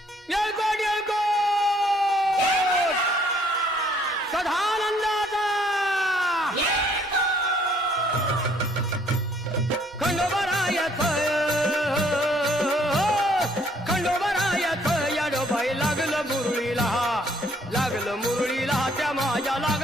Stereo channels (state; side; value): normal; both; correlation 0.64